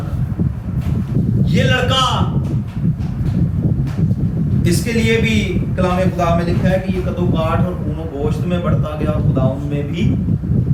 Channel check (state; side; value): identical; both; correlation 1.00